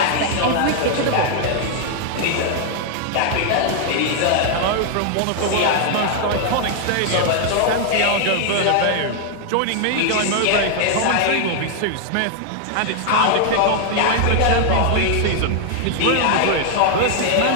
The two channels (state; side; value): different; both; correlation 0.00